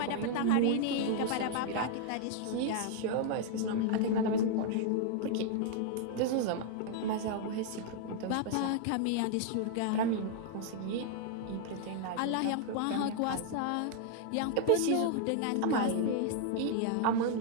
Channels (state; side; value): different; both; correlation 0.00